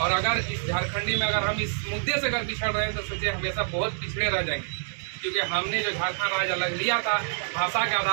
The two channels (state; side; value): silent; left; digital silence